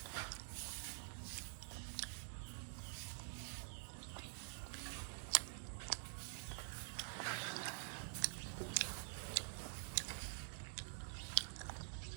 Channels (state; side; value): silent; left; digital silence